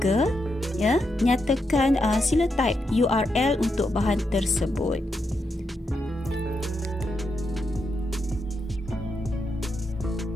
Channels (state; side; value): normal; both; correlation 0.83